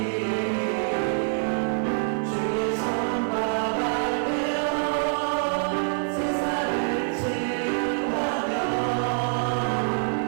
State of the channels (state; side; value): silent; left; 61 dB below the other